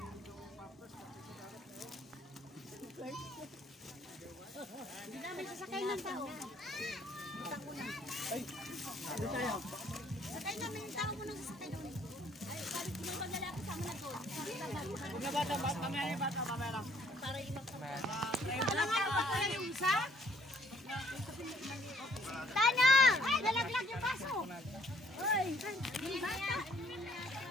May sasakay ng tao. Ay, ano tayo? Sakay namin yung tao mo nang sasakay doon. Ay, bakit may maglalaki sama na doon? Huwag na bata, mamaya lang. Para imang sa mga. Alam nga, baka lang yung isa? Tanya! Ay, nalaglag yung baso! Ay, yung bata!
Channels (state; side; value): normal; both; correlation 0.63